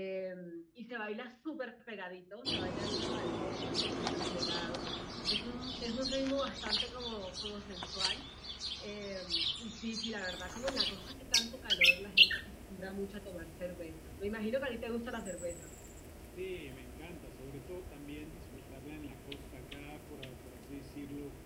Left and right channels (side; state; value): both; identical; correlation 1.00